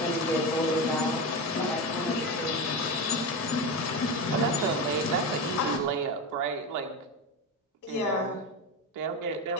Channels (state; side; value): normal; both; correlation 0.20